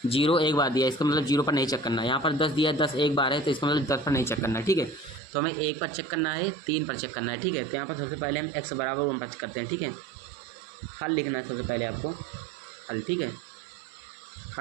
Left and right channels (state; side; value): drops out; left; at 5.2 s